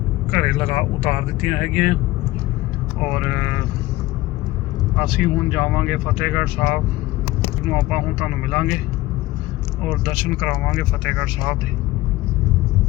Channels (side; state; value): right; quieter; 17.9 dB